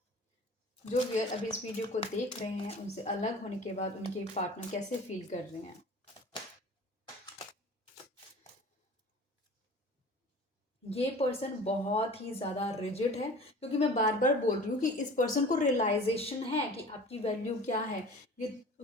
जो व्यूअर अभी इस वीडियो को देख रहे हैं उनसे अलग होने के बाद उनके पार्टनर कैसे फील कर रहे हैं। ये पर्सन बहुत ही ज़्यादा रिजिड है, क्योंकि मैं बार बार बोल रही हूँ कि इस पर्सन को रियलाइजेशन है कि आपकी वैल्यू क्या है। ये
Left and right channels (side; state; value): both; normal; correlation 0.42